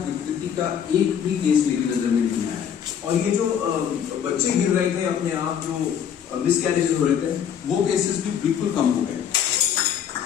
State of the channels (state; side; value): quieter; right; 8.5 dB